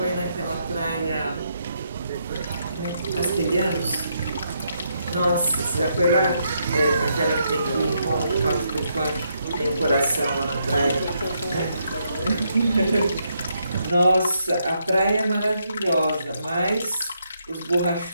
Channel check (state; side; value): inverted; both; correlation -0.78